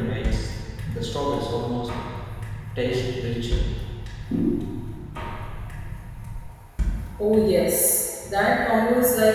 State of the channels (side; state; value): both; identical; correlation 1.00